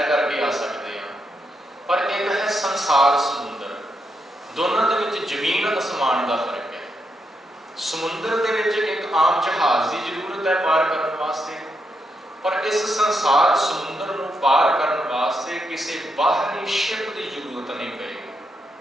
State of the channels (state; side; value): normal; both; correlation 0.82